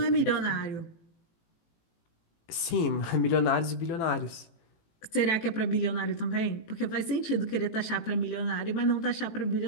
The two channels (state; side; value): late; right; 18 ms